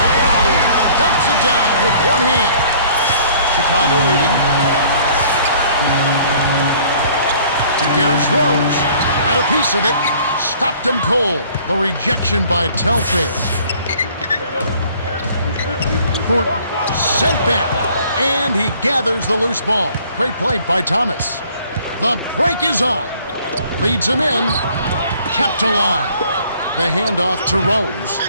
Dumps it down with one hand. Chicago leading. Here's Rose. Had a piece of it. Stopped him cold. The rejection by Telfair. Thornton sent back. And he gathers the loose ball. Great play by Thomas. The break is on. Leads him in. Kept alive. The handoff to Rose.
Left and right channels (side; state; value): both; inverted; correlation -0.56